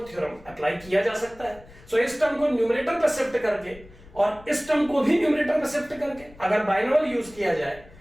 थ्योरम अप्लाई किया जा सकता है। सो इस टर्म को न्यूमरेटर पर शिफ्ट करके और इस टर्म को भी न्यूमरेटर पर शिफ्ट करके अगर बाइनोमियल यूज किया जाए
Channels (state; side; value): noise; left; rumble, 22 dB below the sound